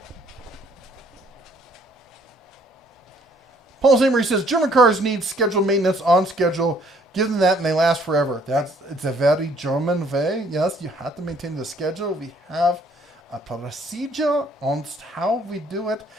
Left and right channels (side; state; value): both; normal; correlation 0.62